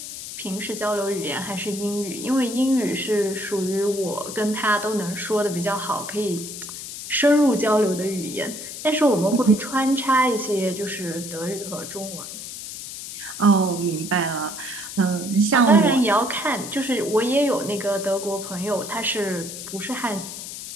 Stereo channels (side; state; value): left; noise; hiss, 9 dB below the sound